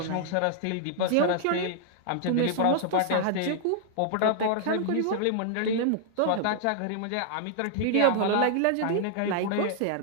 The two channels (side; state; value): both; different; correlation -0.01